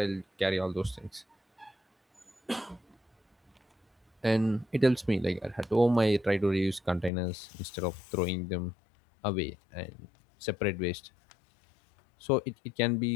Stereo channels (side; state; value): right; drops out; at 7.1 s